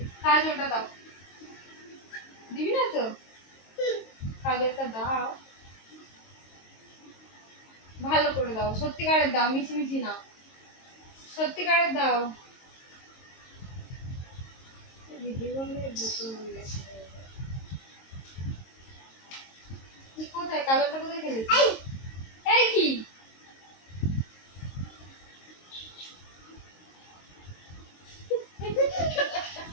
কাজলটা দাও। দিবি না তো? কাজলটা দাও, ভালো করে দাও, সত্যিকারের দাও, মিছিমিছি না, সত্যিকারের দাও। কোথায় কাজলটা কোথায় খেলেছি? এই কি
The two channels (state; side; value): late; right; 22 ms